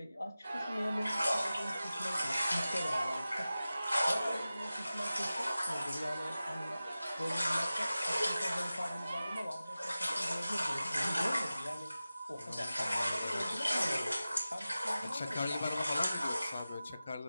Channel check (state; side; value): inverted; both; correlation -0.95